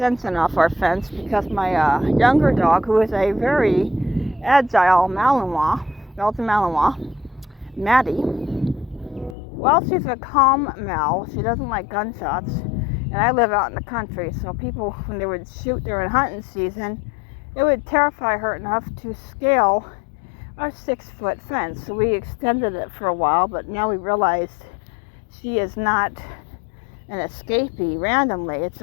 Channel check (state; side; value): drops out; right; at 9.3 s